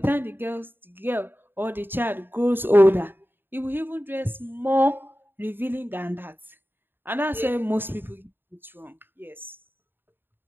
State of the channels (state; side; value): late; left; 0.098 ms